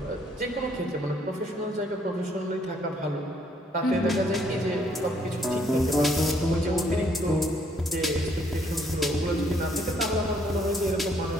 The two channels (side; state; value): both; normal; correlation 0.67